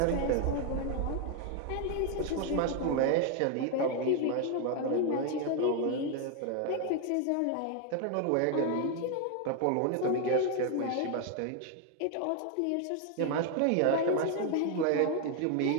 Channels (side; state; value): both; different; correlation 0.00